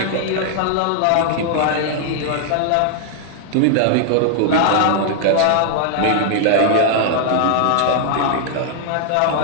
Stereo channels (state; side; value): different; both; correlation 0.00